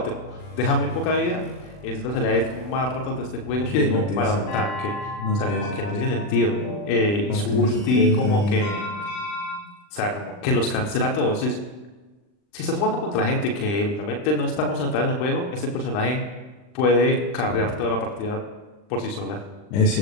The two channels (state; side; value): late; right; 39 ms